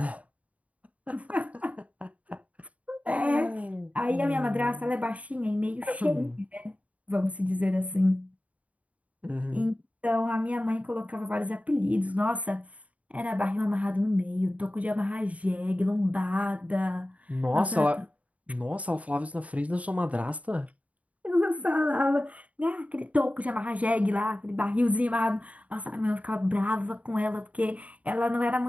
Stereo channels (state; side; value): late; left; 0.068 ms